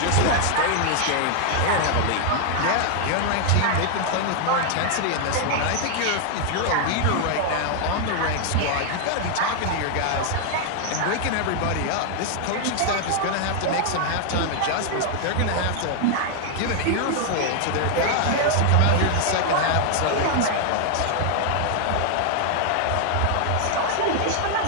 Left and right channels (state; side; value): different; both; correlation 0.00